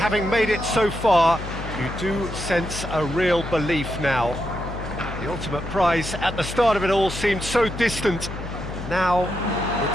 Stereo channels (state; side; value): noise; left; hum, 9 dB below the sound